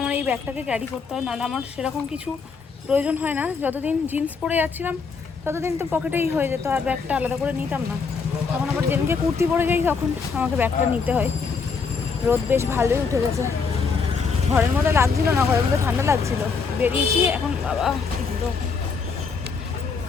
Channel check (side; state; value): right; quieter; 5.2 dB